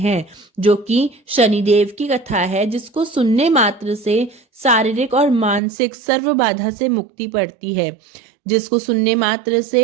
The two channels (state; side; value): drops out; left; at 5.6 s